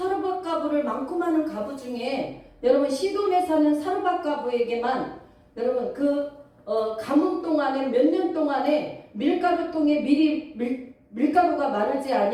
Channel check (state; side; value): identical; both; correlation 1.00